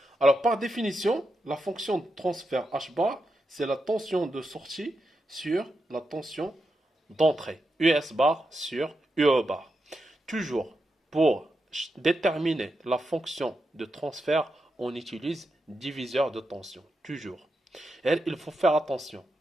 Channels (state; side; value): normal; both; correlation 0.86